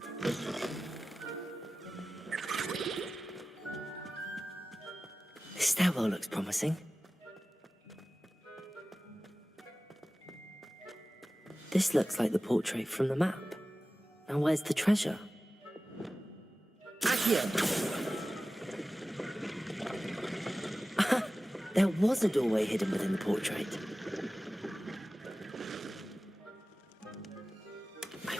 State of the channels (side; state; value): both; normal; correlation 0.96